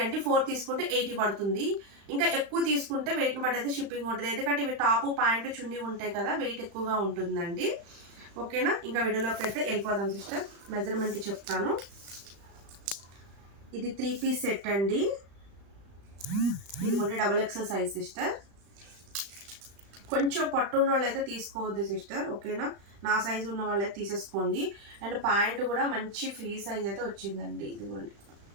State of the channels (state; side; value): late; left; 35 ms